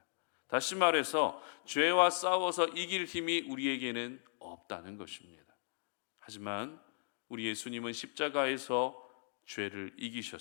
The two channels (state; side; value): silent; right; digital silence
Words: 다시 말해서 죄와 싸워서 이길 힘이 우리에게는 없다는 것입니다. 하지만 우리 예수님은 십자가에서 죄를